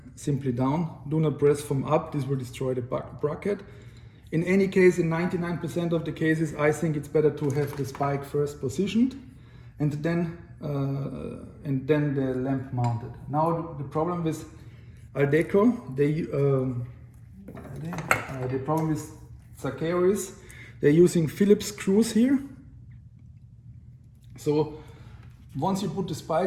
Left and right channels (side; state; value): both; identical; correlation 1.00